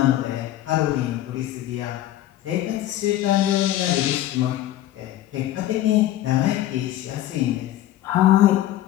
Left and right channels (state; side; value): quieter; right; 13.5 dB